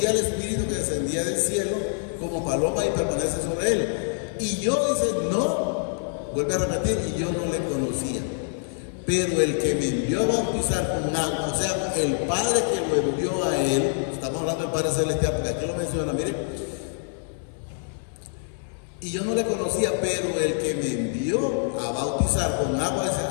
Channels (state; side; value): silent; right; 61 dB below the other